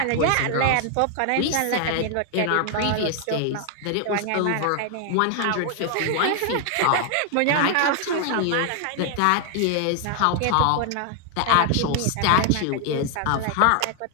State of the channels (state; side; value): different; both; correlation 0.00